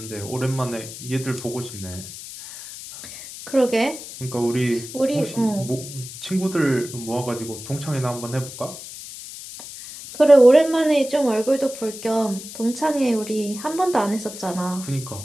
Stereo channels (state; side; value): noise; left; hiss, 12 dB below the sound